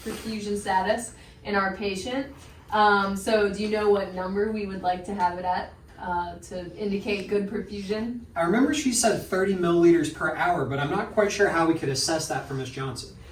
perfusion status in our patient. So do you know what number we would like to have it at to indicate good perfusion? I remember she said 30 milliliters per hour, but I'm not quite sure how we could assess that for Ms. Johnson.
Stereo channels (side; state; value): both; identical; correlation 1.00